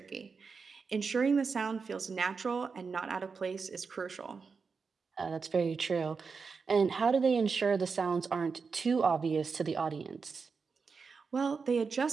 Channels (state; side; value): quieter; left; 5.1 dB